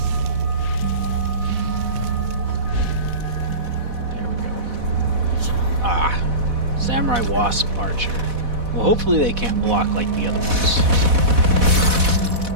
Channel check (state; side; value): late; left; 4.1 ms